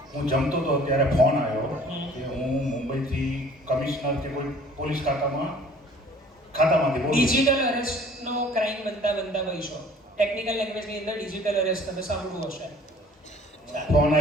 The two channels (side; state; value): both; normal; correlation 0.52